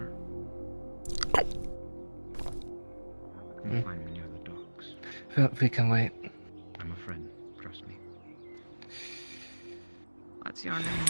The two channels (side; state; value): both; inverted; correlation -1.00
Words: you can find me near the docks. We can wait. I'm a friend, trust me. What's your